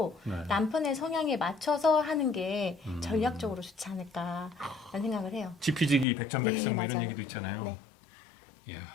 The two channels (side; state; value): right; drops out; at 6.1 s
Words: 네. 남편의 성향에 맞춰서 하는 게 전략적으로 좋지 않을까라는 생각을 해요. 지피지기 백전백승 네, 뭐 이런 맞아요. 얘기도 있잖아요. 네. 이야.